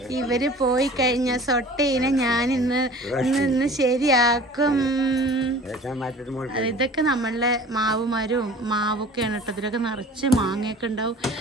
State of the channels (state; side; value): normal; both; correlation 0.44